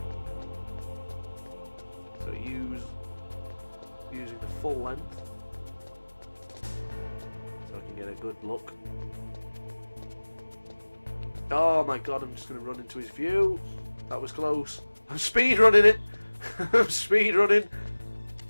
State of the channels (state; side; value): inverted; both; correlation -1.00